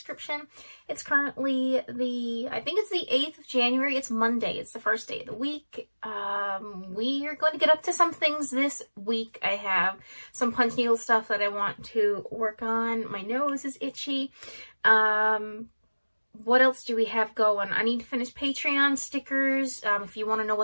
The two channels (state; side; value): inverted; both; correlation -1.00